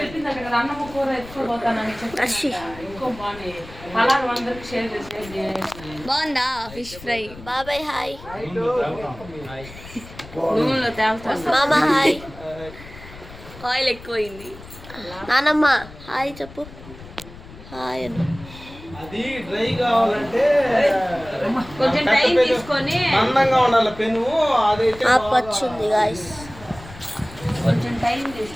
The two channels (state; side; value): noise; left; rumble, 17 dB below the sound